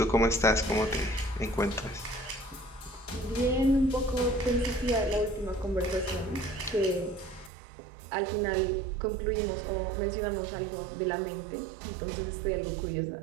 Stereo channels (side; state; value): left; drops out; at 7.5 s